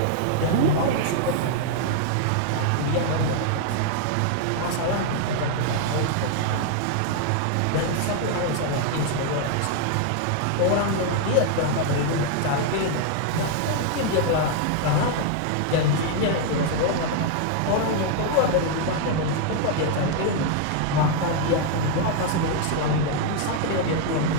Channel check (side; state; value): both; different; correlation 0.00